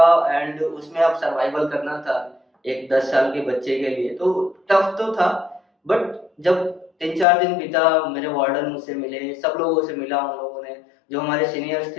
एंड उसमें अब सर्वाइवल करना था एक 10 साल के बच्चे के लिए, तो टफ तो था। बट जब 3-4 दिन बीता, मेरे वार्डन मुझसे मिले, सब लोगों से मिला, उन लोगों ने जो हमारे सीनियर्स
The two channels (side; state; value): right; drops out; at 7.2 s